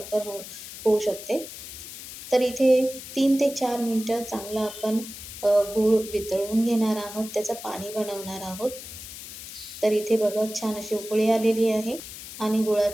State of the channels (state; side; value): noise; left; hiss, 12 dB below the sound